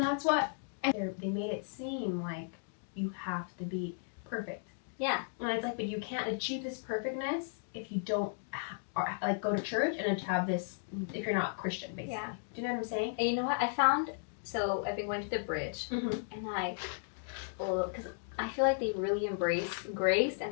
what they made it seem like you have to be perfect. Yeah. And it's like, but you can't achieve this perfectness if you don't like go to church and have this if you're not Christian, basically. Yeah. Do you know what I'm saying? And you know what I found? So I've been going to the bridge, Mm-hmm. and because I feel like they really embrace grace,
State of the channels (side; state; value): right; silent; digital silence